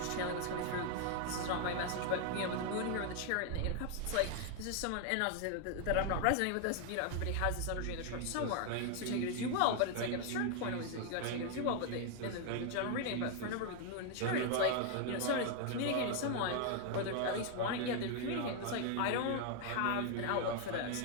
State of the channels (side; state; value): both; different; correlation 0.00